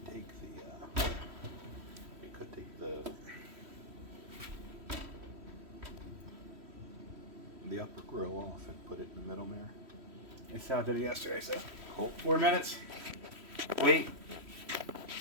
take the upper grill off and put it in the middle there. That's how I did it yesterday. So Cool. 4 minutes. Wait.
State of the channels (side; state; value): left; late; 3.1 ms